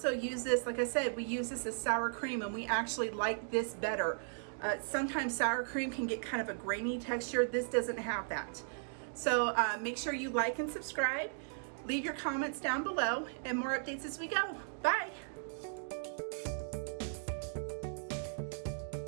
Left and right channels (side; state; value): left; silent; digital silence